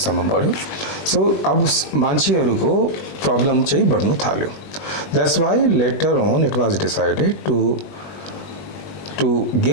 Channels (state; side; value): late; right; 21 ms